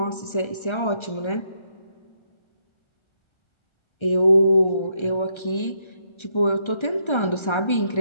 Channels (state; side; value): late; right; 1.3 ms